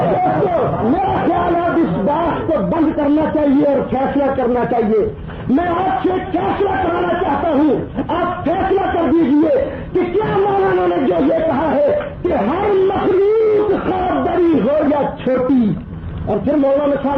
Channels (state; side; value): identical; both; correlation 1.00